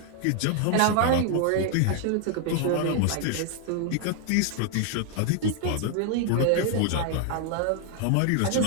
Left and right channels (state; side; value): different; both; correlation 0.00